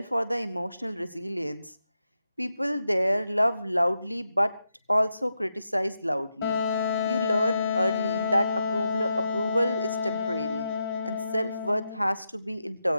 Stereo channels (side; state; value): both; inverted; correlation -0.86